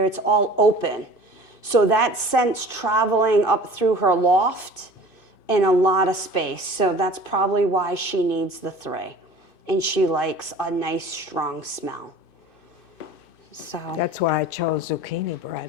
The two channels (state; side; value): late; right; 2.5 ms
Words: it's all open. So that scent's traveling up through her loft in a lot of space. So that's probably why she needs the 3. And she likes a nice, strong smell. So, That's why I chose zucchini